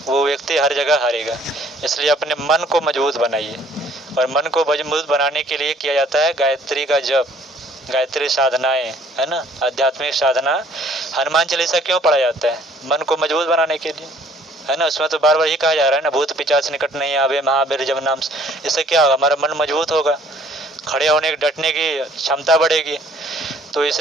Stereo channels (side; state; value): both; normal; correlation 0.59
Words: वो व्यक्ति हर जगह हारेगा। इसलिए अपने मन को मजबूत बनाइए, और मन को मजबूत बनाने के लिए किया जाता है गायत्री का जप, गायत्री साधनाएं, है ना, आध्यात्मिक साधना। हनुमान चालीसा क्यों पढ़ा जाता है? मन को मजबूत बनाने के लिए, है ना। उसमें तो बार बार ही कहा जा रहा है ना, भूत पिशाच निकट नहीं आवे महावीर जब नाम। इससे क्या होगा? हमारा मन मजबूत होगा, खड़े होने डटने की क्षमता बढ़ेगी। तो